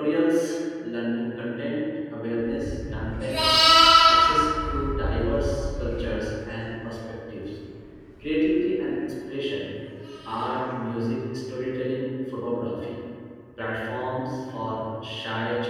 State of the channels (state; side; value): identical; both; correlation 1.00